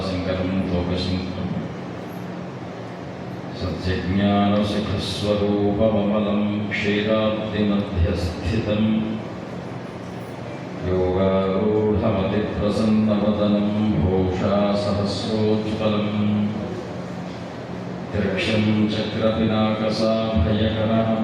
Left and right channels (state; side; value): identical; both; correlation 1.00